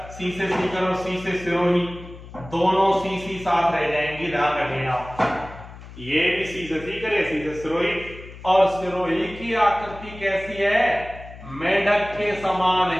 सी से सीकर और सी से सिरोही, दोनों सी साथ रह जाएंगी, ध्यान रखें आप। ये भी सी से सीकर है, सी से सिरोही। और सिरोही की आकृति कैसी है, मेढक के समान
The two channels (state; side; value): noise; left; hum, 16 dB below the sound